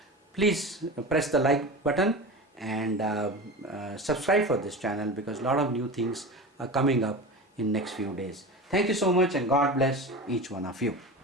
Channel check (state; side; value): normal; both; correlation 0.29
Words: please press the like button and subscribe for this channel, because a lot of new things are coming up in next few days. Thank you so much, and God bless each one of you.